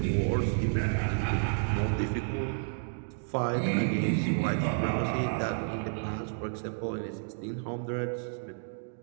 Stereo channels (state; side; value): silent; left; digital silence